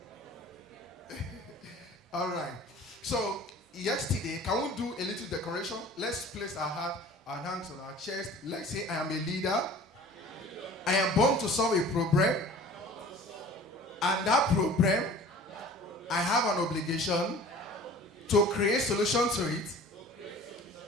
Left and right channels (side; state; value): both; normal; correlation 0.45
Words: All right. So, yesterday, can we do a little decoration? Let's place our hands on our chest. Let's say, I am a leader. I am born to solve a problem. And that problem, I have an obligation to create solution to it